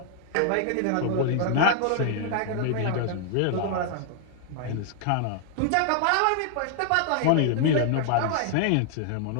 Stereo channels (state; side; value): different; both; correlation 0.00